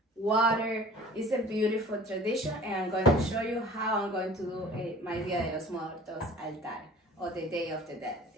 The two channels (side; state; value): both; normal; correlation 0.45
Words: water. It's a beautiful tradition, and I'm going to show you how I'm going to do my Dia de los Muertos altar, or the Day of the Dead